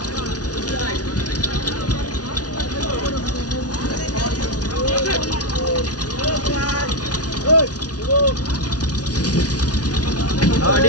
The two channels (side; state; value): right; late; 0.68 ms